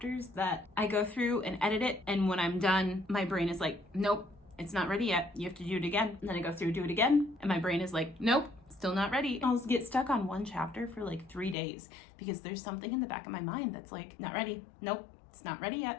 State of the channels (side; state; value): right; drops out; at 11.6 s